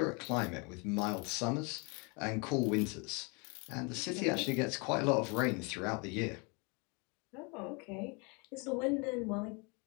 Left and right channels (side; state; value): right; quieter; 31.4 dB